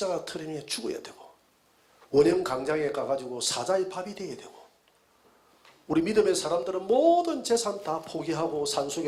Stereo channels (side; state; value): both; identical; correlation 1.00